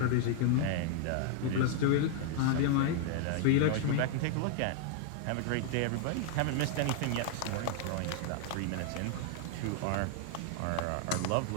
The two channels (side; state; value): both; different; correlation 0.00